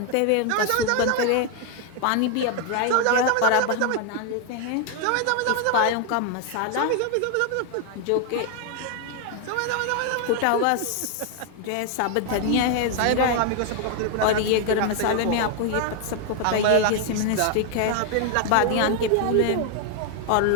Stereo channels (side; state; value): both; different; correlation 0.00